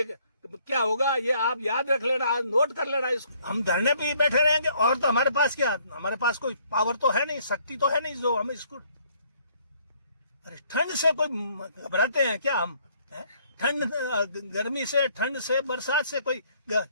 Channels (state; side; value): inverted; both; correlation -0.64